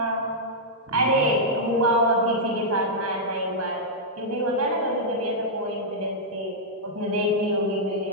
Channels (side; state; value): both; normal; correlation -0.08